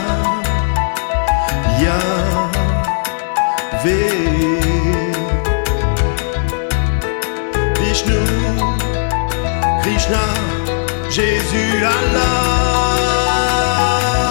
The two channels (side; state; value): right; silent; digital silence